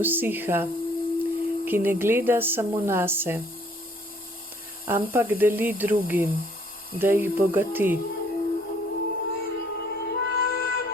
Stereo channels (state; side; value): normal; both; correlation 0.61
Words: ki ne gleda samo nase, ampak deli drugim, da jih bogati.